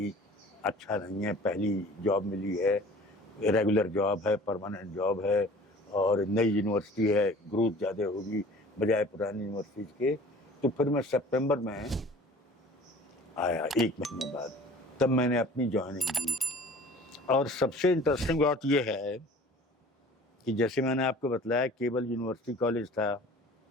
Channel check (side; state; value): both; normal; correlation 0.46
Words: अच्छा नहीं है, पहली जॉब मिली है, रेगुलर जॉब है, परमानेंट जॉब है और नई यूनिवर्सिटी है, ग्रोथ ज़्यादा होगी बजाय पुरानी यूनिवर्सिटी के। तो फिर मैं सितंबर में आया 1 महीने बाद, तब मैंने अपनी ज्वाइनिंग दी। और सबसे इंटरेस्टिंग बात यह है कि जैसे मैंने आपको बताया केवल यूनिवर्सिटी कॉलेज था,